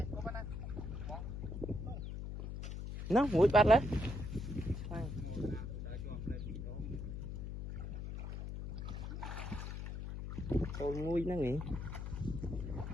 Nó mũi bắt lấy. Tôi nguôi nó nghỉ.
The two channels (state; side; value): noise; left; hum, 6 dB below the sound